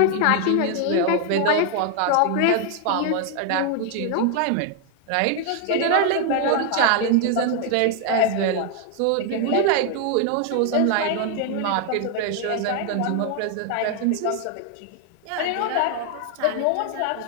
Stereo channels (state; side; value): different; both; correlation 0.00